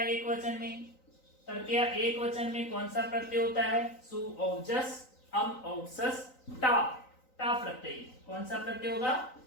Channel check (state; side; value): late; right; 3.9 ms